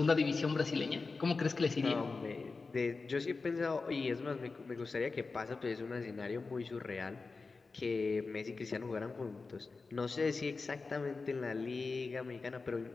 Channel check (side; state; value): right; quieter; 4.1 dB